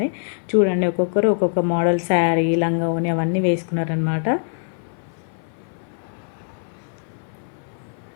చూడండి ఒక్కొక్కరు ఒక్కొక్క మోడల్ శారీ, లంగా ఓని అవన్నీ వేసుకున్నారనమాట.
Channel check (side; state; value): right; silent; 58 dB below the other